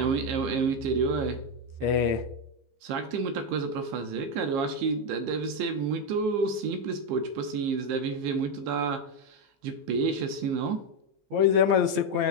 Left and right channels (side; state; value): left; late; 15 ms